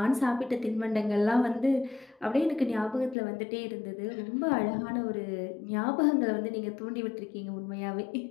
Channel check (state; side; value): drops out; right; at 3.2 s